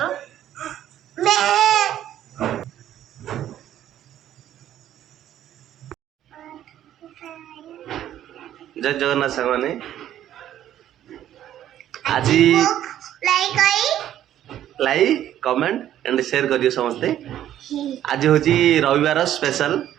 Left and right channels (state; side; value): quieter; left; 11.6 dB